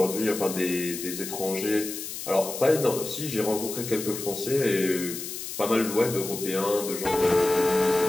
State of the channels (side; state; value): left; noise; hiss, 8 dB below the sound